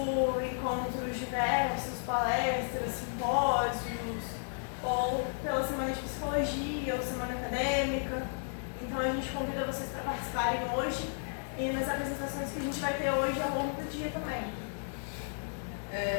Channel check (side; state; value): right; silent; 56 dB below the other